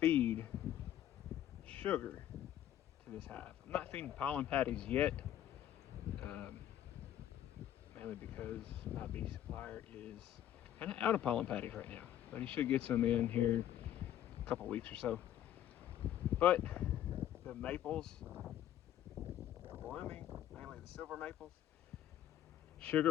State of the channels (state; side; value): quieter; right; 11.6 dB